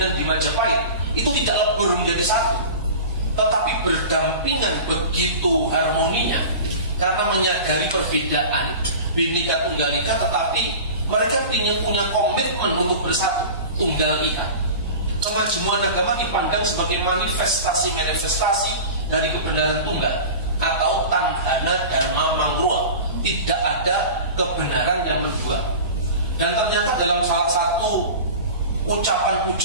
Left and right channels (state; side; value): inverted; both; correlation -0.34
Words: di Majapahit itu tidak lebur menjadi satu, tetapi berdampingan begitu harmoninya. Karena menyadari perbedaan Bhinneka Tunggal Ika, tetapi mereka punya komitmen untuk bersatu, Tunggal Ika. Kemajuan agama dipandang sebagai manifestasi dari kebenaran tunggal atau tanghana dharma mangruah, tidak ada kebenaran yang mendua. Dan ternyata dalam salah satu ucapan